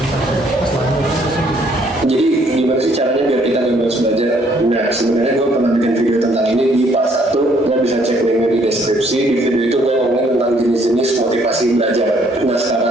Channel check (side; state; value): both; normal; correlation 0.65